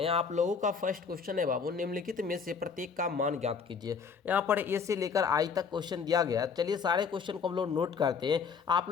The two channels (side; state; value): right; quieter; 5.9 dB